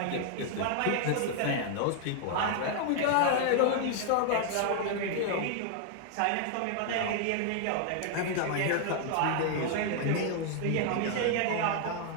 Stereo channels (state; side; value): different; both; correlation 0.00